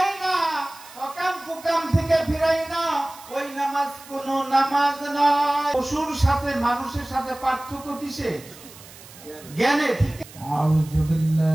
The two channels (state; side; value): noise; right; hiss, 19 dB below the sound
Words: না, অকাম কুকাম থেকে ফিরাই না, ওই নামাজ কোনো নামাজ নয়। পশুর সাথে মানুষের সাথে পার্থক্য কিসে? জ্ঞানে। আউযু